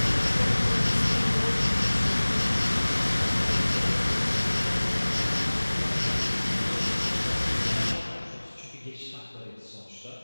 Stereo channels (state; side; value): inverted; both; correlation -1.00